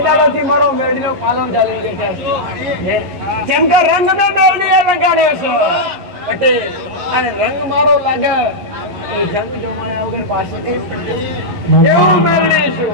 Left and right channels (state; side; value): late; left; 11 ms